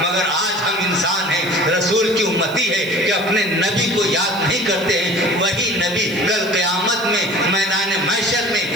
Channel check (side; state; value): right; noise; hiss, 19 dB below the sound